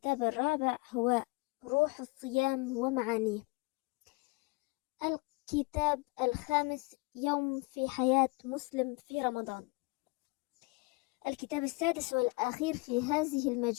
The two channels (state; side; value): quieter; right; 26.7 dB